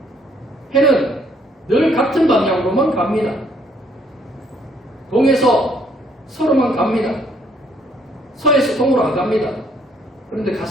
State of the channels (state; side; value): normal; both; correlation 0.66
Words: 해는 늘 같은 방향으로만 갑니다. 동에서 서로만 갑니다. 서에서 동으로 안 갑니다. 그런데